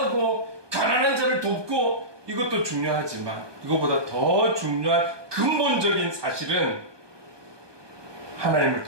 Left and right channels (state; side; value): late; left; 1.2 ms